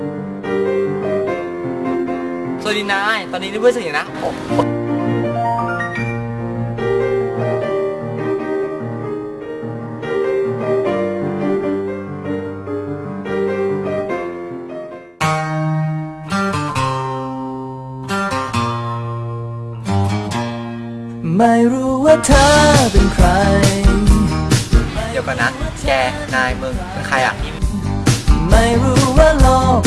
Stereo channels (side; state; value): both; identical; correlation 1.00